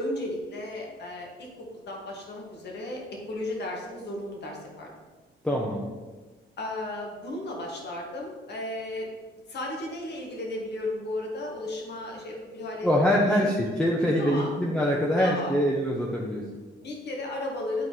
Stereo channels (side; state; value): both; normal; correlation 0.65